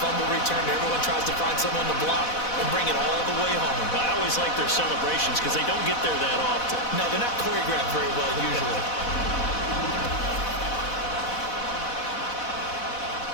return? Everyone tries to find someone to block and bring it all the way home. I always like their celebrations because they don't get there that often. No, they're not choreographed very well usually.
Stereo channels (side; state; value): right; late; 4.1 ms